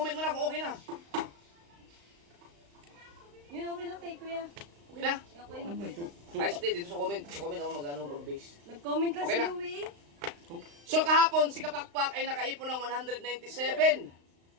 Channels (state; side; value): late; left; 35 ms